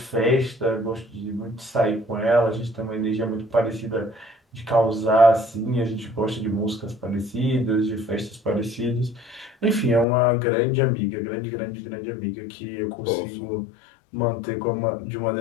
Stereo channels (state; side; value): drops out; right; at 10.1 s